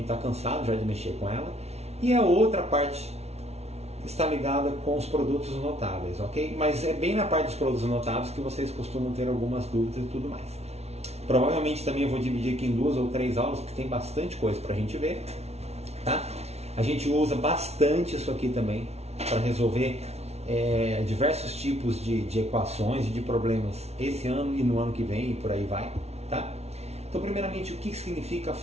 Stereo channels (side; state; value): left; late; 0.31 ms